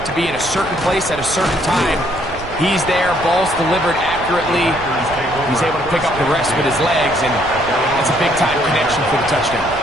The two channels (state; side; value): noise; right; rumble, 15 dB below the sound